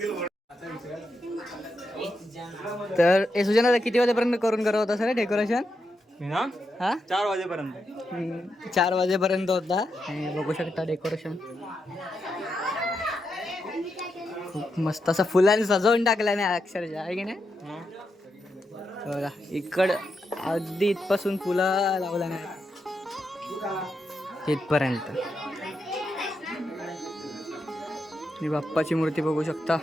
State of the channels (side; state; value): both; normal; correlation 0.84